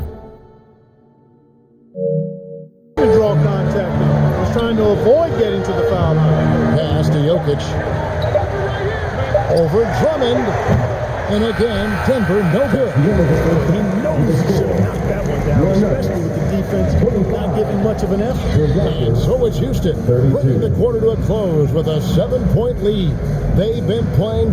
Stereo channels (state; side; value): identical; both; correlation 1.00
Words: to draw contact. He was trying to avoid getting to the foul line. Pass to Jokic. Over Drummond. And again, Denver, no good. He knows he should have knocked that one down, especially with the defense not giving much of an effort. And so it's Houston, bringing the quarter to a close with a 7-point lead. They've been playing